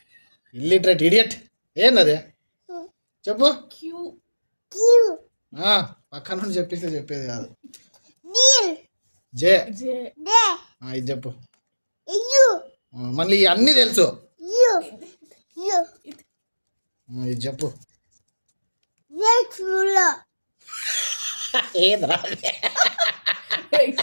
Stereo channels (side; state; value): both; inverted; correlation -1.00